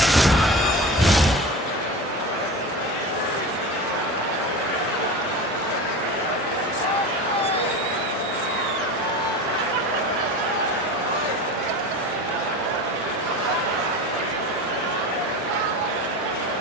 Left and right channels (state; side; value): normal; both; correlation 0.30